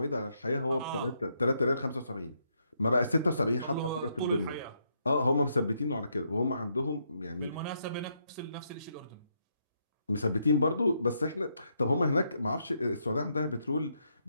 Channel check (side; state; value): both; inverted; correlation -0.77